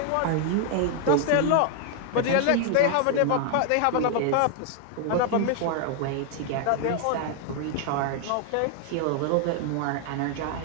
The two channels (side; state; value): both; different; correlation 0.00